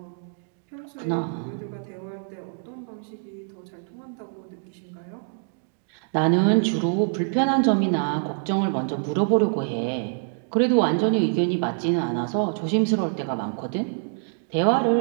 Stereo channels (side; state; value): left; silent; 58 dB below the other